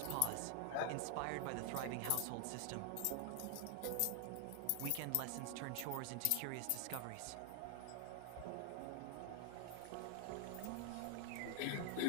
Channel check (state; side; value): different; both; correlation 0.00